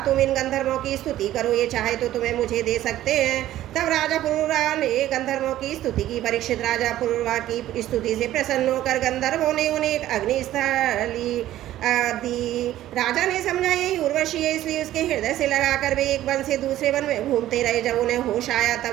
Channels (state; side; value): quieter; left; 13.7 dB